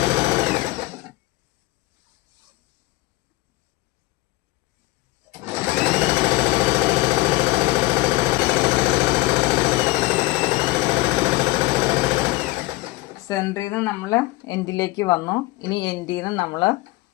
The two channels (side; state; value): right; quieter; 20.4 dB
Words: സെൻറ്ററിൽ നിന്ന് നമ്മൾ എൻഡിലേക്ക് വന്നു. ഇനി എൻഡിൽ നിന്ന് നമ്മൾ